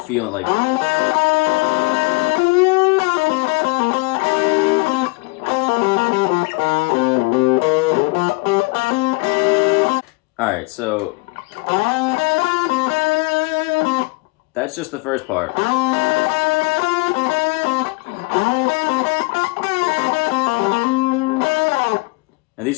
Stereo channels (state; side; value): quieter; right; 28.1 dB